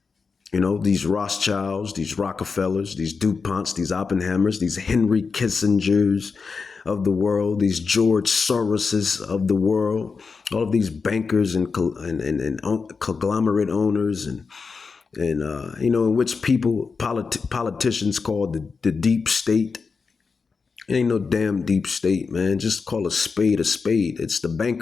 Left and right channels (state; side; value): quieter; right; 4.9 dB